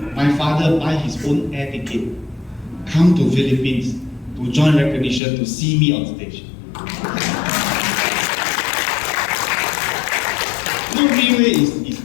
my father buy his own air ticket, come to Philippines to join recognition to see me on stage. No, RIWAY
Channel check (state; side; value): drops out; right; at 5.2 s